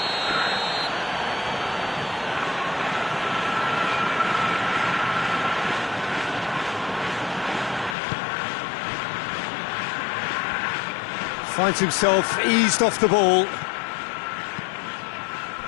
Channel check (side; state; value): right; drops out; at 8.0 s